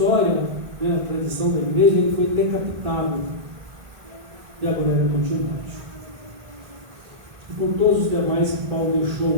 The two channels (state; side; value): late; left; 2.5 ms